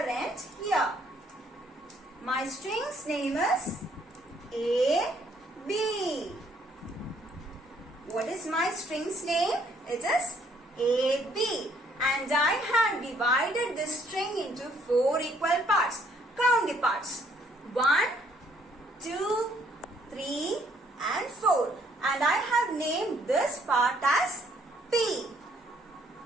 end here. My string's name is A, B. What is my string's name? It is A, B. And I have divided this string into 4 equal parts. Count the parts. 1, 2, 3 and 4. And I have named this part as P.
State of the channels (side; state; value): both; normal; correlation 0.66